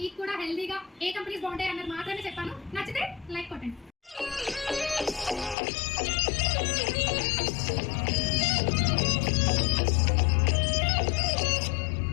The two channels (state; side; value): drops out; right; at 5.6 s